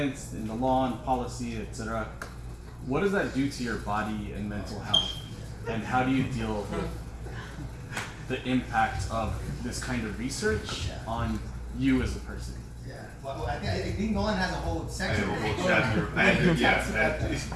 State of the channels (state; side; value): identical; both; correlation 1.00